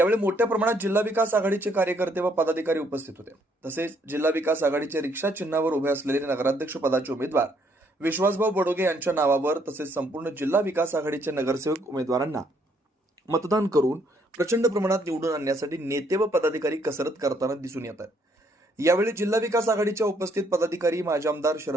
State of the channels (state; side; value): normal; both; correlation 0.69